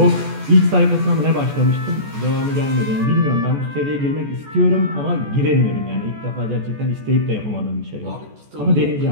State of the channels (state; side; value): late; left; 14 ms